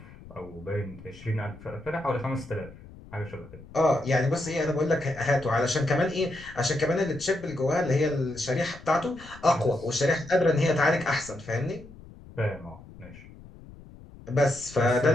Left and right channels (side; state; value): left; noise; rumble, 19 dB below the sound